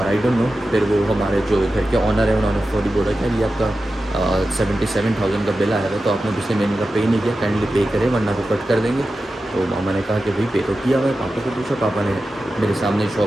आई डोंट नो, फिर वो हमारे जो घर के ऑनर है उन्होंने फौरी बोला कि ये आपका 77,000 का बिल आया था, तो आपने पिछले महीने का पे नहीं किया, काइंडली पे करें वरना वो कट कर देंगे। तो मामा ने कहा कि भाई पे तो किया हुआ है। पापा को पूछा, पापा ने मेरे सामने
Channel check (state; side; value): normal; both; correlation 0.93